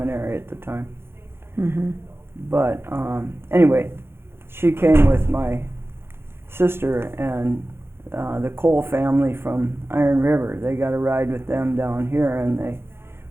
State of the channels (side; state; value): left; late; 0.11 ms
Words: at the time. Mm-hmm. But anyway, she came with my sister and the Cole family from Iron River. They got a ride with them down here, and they